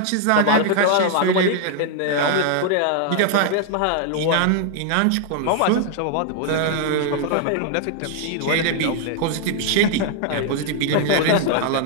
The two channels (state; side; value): different; both; correlation 0.00